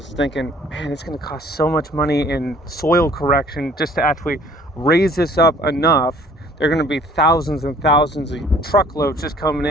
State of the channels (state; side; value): normal; both; correlation 0.55